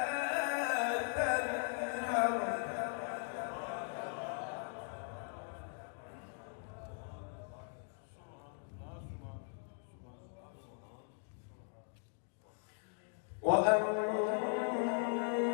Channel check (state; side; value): silent; right; 51 dB below the other